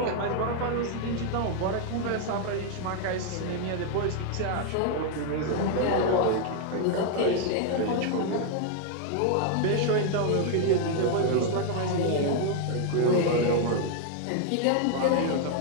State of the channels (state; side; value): different; both; correlation 0.00